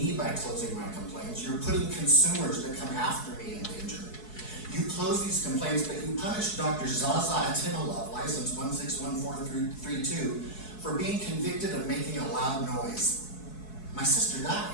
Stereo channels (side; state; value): right; late; 4.7 ms